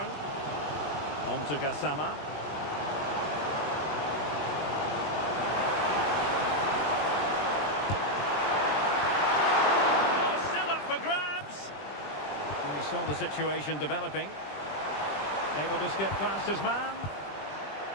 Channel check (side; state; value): right; late; 20 ms